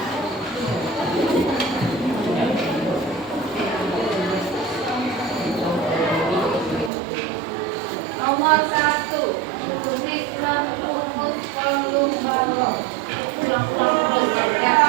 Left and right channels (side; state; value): left; drops out; at 6.9 s